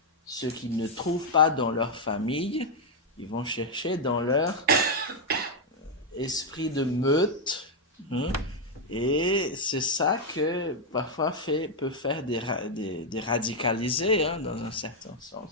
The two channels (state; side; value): normal; both; correlation 0.00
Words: ce qu'ils ne trouvent pas dans leur famille, ils vont chercher dans leur esprit de meute. Et c'est ça que parfois peut faire des radicalisés, dans un certain